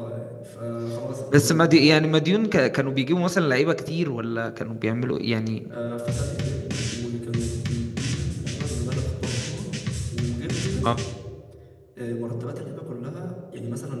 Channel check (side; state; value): both; identical; correlation 1.00